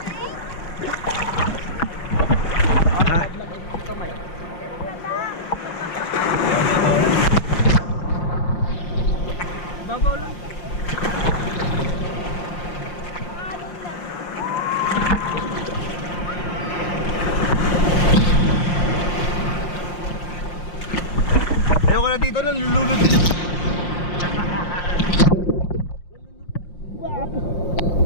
Ha? Babaw lang. rito, nalulunod din.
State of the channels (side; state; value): right; late; 5.7 ms